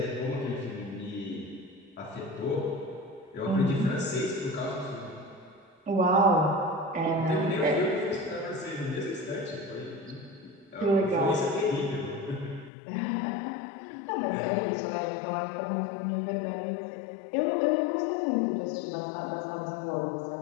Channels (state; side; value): drops out; right; at 12.7 s